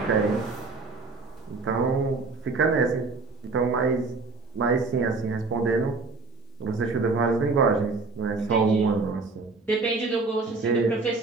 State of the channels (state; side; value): quieter; left; 3.9 dB